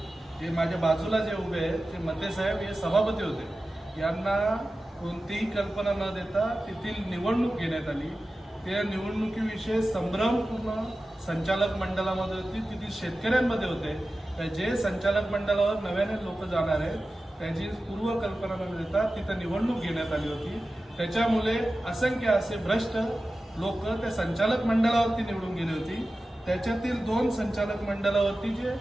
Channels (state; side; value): normal; both; correlation 0.94